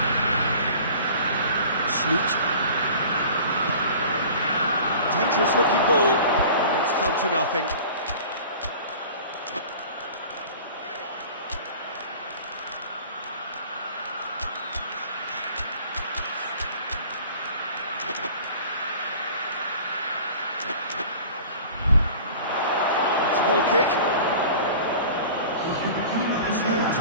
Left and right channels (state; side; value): inverted; both; correlation -0.43